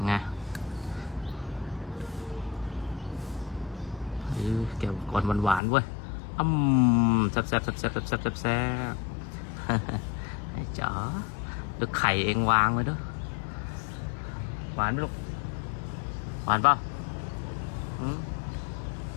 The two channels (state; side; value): drops out; right; at 5.6 s